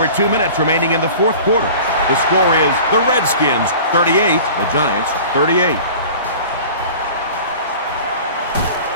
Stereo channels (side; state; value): both; inverted; correlation -0.41